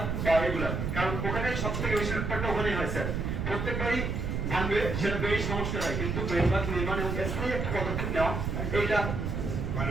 বা এগুলা, কারণ ওখানে সব থেকে বেশি ব্যাপারটা ওখানেই হয় স্যার, প্রত্যেকবারই ভাঙবে সেটা বেড়ি সমস্যা হয়, কিন্তু বেড়িবাঁধ নির্মাণ এবং স্থায়ী একটা পদক্ষেপ নেওয়া এইটা।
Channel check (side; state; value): right; noise; rumble, 2 dB below the sound